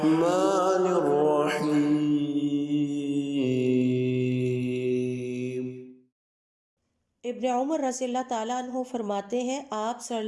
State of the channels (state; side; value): identical; both; correlation 1.00